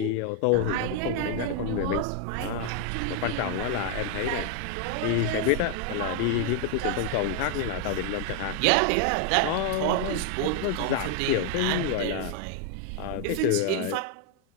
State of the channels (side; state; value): both; different; correlation 0.00